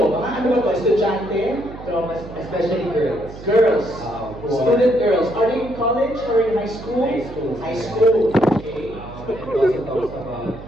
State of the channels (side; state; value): right; noise; hum, 14 dB below the sound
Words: mga ano ba to? Estudyante? Traumas, especially girls. Girls. Who are- Student girls. Are they in college or in high school? High school. High school. Okay. And it also talks about